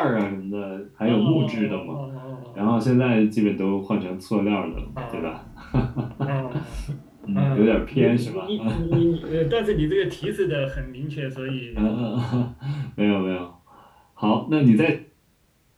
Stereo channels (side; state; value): both; identical; correlation 1.00